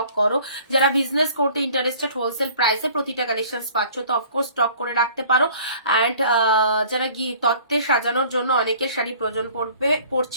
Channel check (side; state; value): both; inverted; correlation -0.51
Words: করো। যারা বিজনেস করতে ইন্টারেস্টেড হোলসেল প্রাইসে প্রতিটা কালেকশন পাচ্ছ, তো অফকোর্স স্টক করে রাখতে পারো। অ্যান্ড যারা তত্ত্বে সাজানোর জন্য অনেকের শাড়ি প্রয়োজন